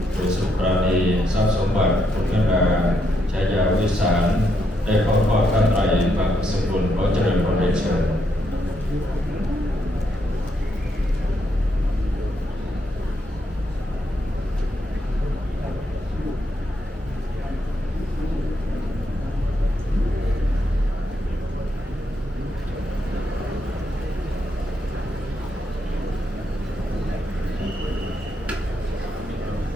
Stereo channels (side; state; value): both; normal; correlation 0.78